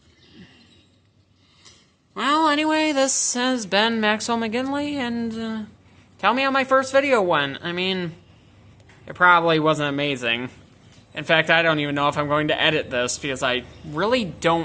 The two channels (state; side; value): identical; both; correlation 1.00